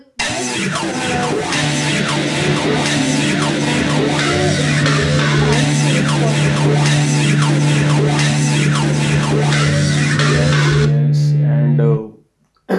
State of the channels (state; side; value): identical; both; correlation 1.00